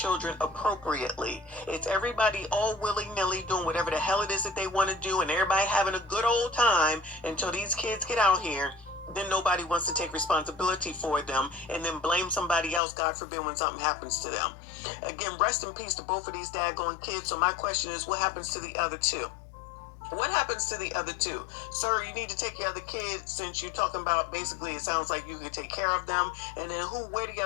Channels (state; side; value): drops out; right; at 12.8 s